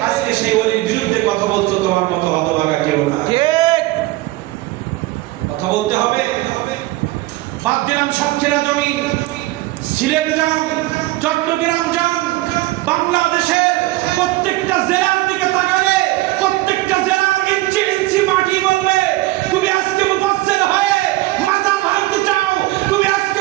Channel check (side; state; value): left; quieter; 18.6 dB